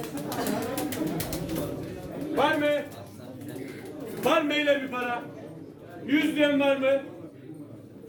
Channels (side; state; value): both; identical; correlation 1.00